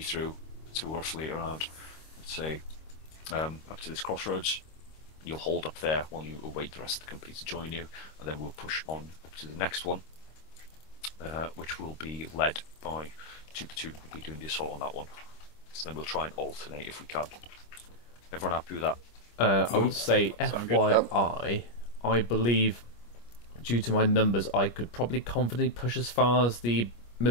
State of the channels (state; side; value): late; right; 25 ms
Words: through to roughly around, let's say, up to this crossroads. You'll hold up there while you await the rest of the company to join you, and then we'll push on up to the next one, which will be led by Two Platoon. We'll be doing the assault on that one. So then we'll try and alternate if we can. Everyone happy with that? I would say FYI, I believe, due to my numbers, I could probably confidently push as far as the